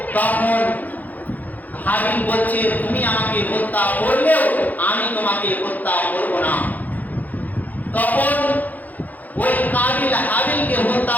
তখন হাবিল বলছে তুমি আমাকে হত্যা করলেও আমি তোমাকে হত্যা করব না। তখন ওই কাবিল হাবিলকে হত্যা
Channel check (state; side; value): late; right; 0.081 ms